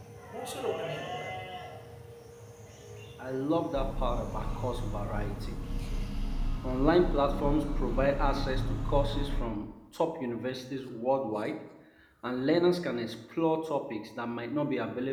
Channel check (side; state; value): both; identical; correlation 1.00